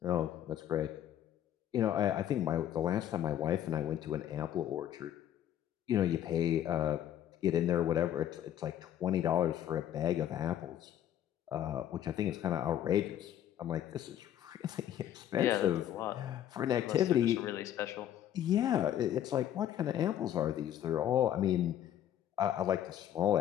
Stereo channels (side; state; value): right; quieter; 11.0 dB